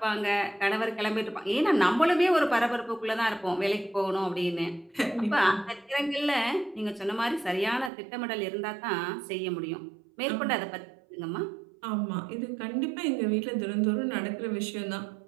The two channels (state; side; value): drops out; left; at 7.9 s